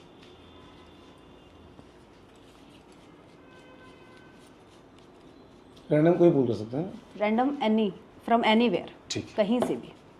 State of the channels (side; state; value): both; identical; correlation 1.00